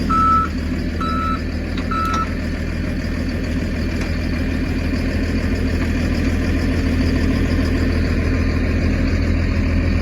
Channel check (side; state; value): both; identical; correlation 1.00